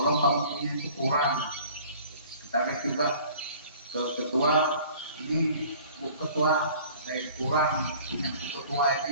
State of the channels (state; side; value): inverted; both; correlation -0.49